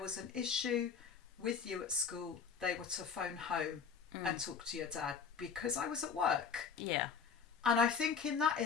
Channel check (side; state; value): right; quieter; 6.2 dB